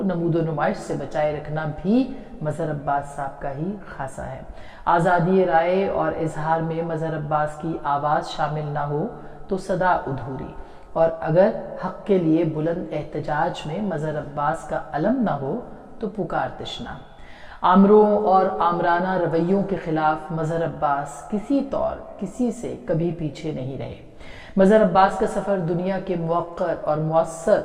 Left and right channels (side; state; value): both; identical; correlation 1.00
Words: نمود و نمائش سے بچائے رکھنا بھی مظہر عباس صاحب کا ہی خاصہ ہے. آزادی رائے اور اظہار میں مظہر عباس کی آواز شامل نہ ہو تو صدا ادھوری, اور اگر حق کے لیے بلند احتجاج میں مظہر عباس کا علم نہ ہو تو پکار تشنا. آمروں اور آمرانہ رویوں کے خلاف مظہر عباس کسی طور کسی سے کبھی پیچھے نہیں رہے. مظہر عباس کا سفر دنیا کے موقر اور مؤثر